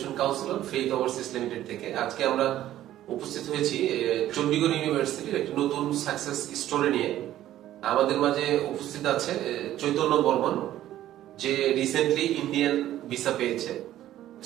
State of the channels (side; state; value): left; quieter; 13.1 dB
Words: Councillor faith overseas limited থেকে। আজকে আমরা উপস্থিত হয়েছি চণ্ডীগড় ইউনিভার্সিটির একটি নতুন সাকসেস স্টোরি নিয়ে। আমাদের মাঝে উপস্থিত আছে চৈতন্য বর্মন, যে রিসেন্টলি ইন্ডিয়ান ভিসা পেয়েছে